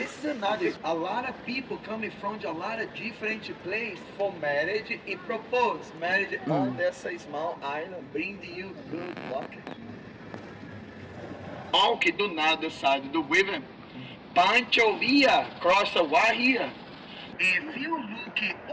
is another. A lot of people coming from a lot of different places for marriage e propose marriage on dessa small island, bring you good luck. Walk do nada side do river. Pancho here, cross a wire here. If you look it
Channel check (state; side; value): identical; both; correlation 1.00